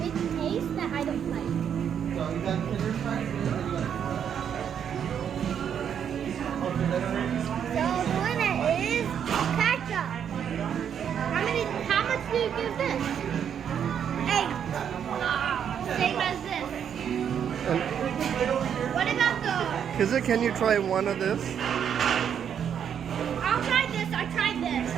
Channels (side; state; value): left; quieter; 8.4 dB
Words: taste that I don't like. So the winner is ketchup. How much do you give this? 8. Same as this. What about the... Kizza, can you try one of this? I'll try this. I tried this.